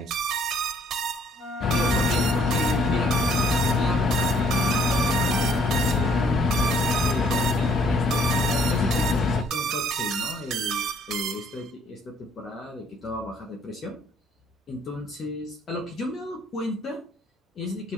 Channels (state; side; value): normal; both; correlation 0.63